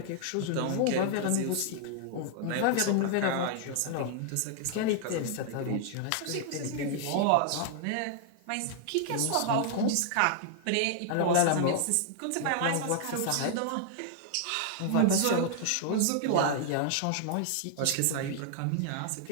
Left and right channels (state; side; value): different; both; correlation 0.00